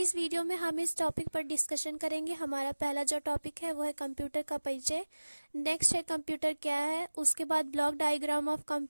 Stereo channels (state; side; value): inverted; both; correlation -1.00